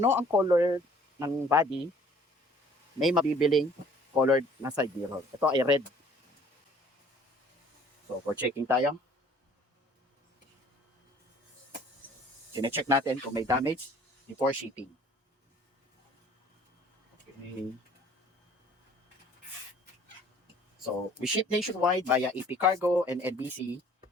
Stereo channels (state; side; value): normal; both; correlation 0.55